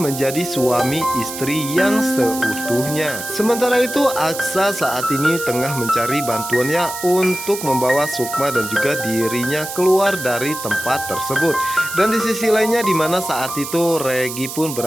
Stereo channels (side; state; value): right; noise; hiss, 8 dB below the sound